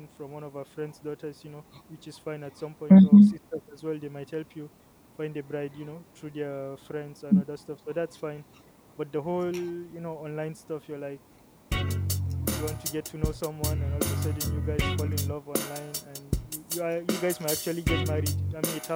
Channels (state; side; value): identical; both; correlation 1.00